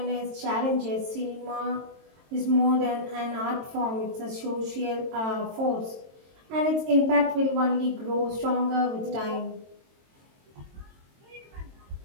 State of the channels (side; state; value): left; late; 22 ms